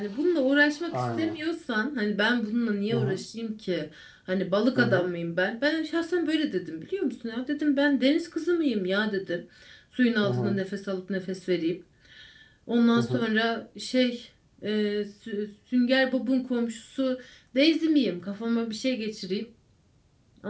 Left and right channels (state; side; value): identical; both; correlation 1.00